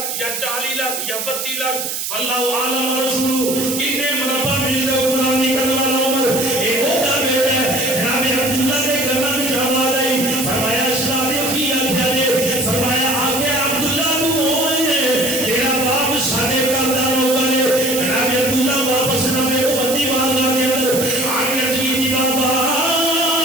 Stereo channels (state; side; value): noise; right; hiss, 3 dB below the sound